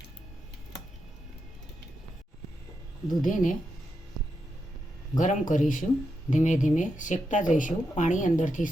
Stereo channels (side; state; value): both; normal; correlation 0.85